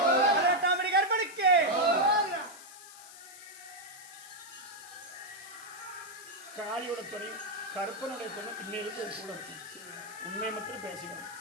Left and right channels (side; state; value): left; noise; hiss, 17 dB below the sound